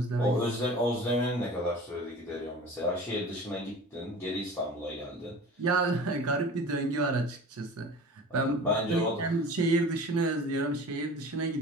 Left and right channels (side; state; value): both; normal; correlation 0.39